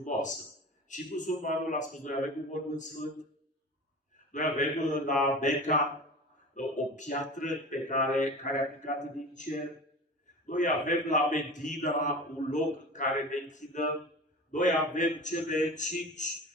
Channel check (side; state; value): both; normal; correlation 0.35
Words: Și musulmanul a spus, noi avem un mormânt sfânt. Noi avem la Mecca o piatră pe care a picat din cer. Noi avem la Medina un loc care ne închinăm. Noi avem cele 5